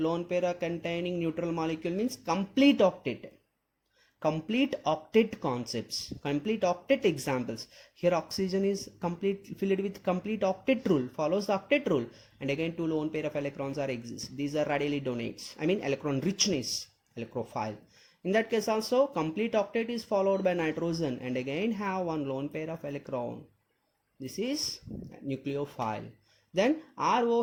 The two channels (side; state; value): both; identical; correlation 1.00